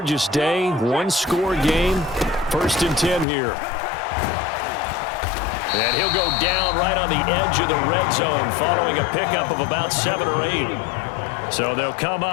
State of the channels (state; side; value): drops out; right; at 3.2 s